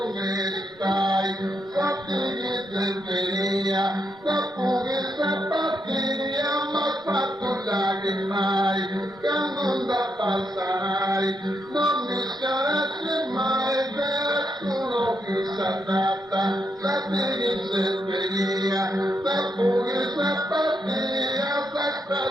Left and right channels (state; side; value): normal; both; correlation 0.80